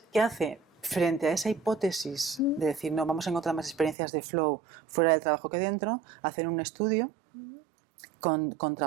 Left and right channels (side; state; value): left; drops out; at 4.0 s